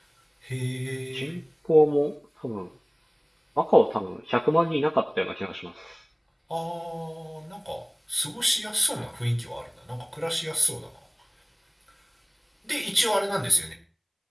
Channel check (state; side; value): identical; both; correlation 1.00